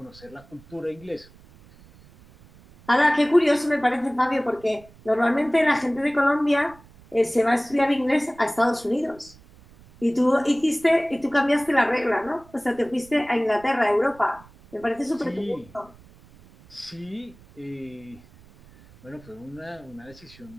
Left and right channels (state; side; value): noise; right; rumble, 25 dB below the sound